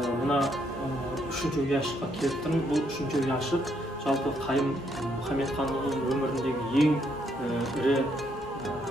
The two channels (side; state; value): both; normal; correlation 0.73